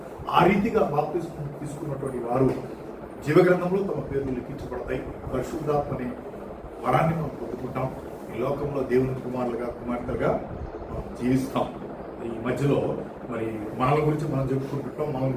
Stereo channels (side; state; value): both; identical; correlation 1.00